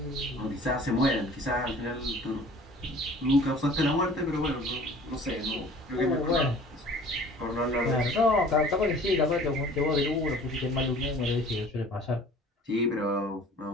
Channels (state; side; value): normal; both; correlation 0.48